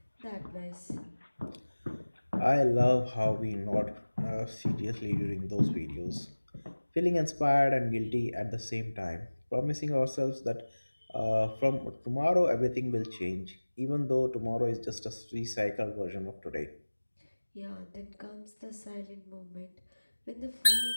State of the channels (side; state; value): both; inverted; correlation -1.00